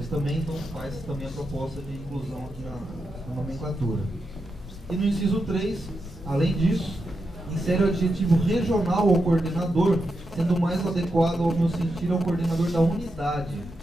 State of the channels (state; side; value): normal; both; correlation 0.86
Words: também, então faz também a proposta de inclusão aqui na nomenclatura. E no inciso 3, além disso, insere o adjetivo regional ao coordenador, sendo mais adequado ao meu sentir ao coordenador da unidade,